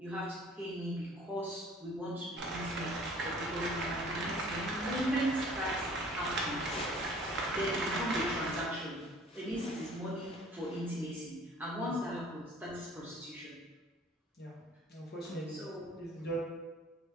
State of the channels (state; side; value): normal; both; correlation 0.52